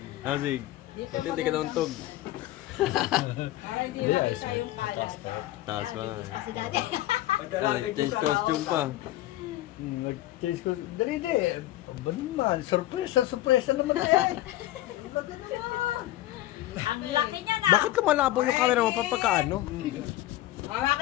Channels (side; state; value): right; quieter; 15.5 dB